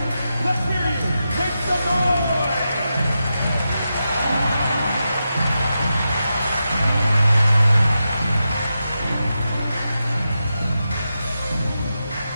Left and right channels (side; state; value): both; inverted; correlation -0.89